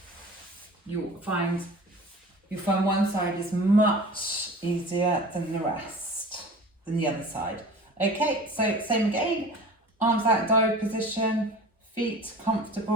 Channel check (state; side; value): normal; both; correlation 0.39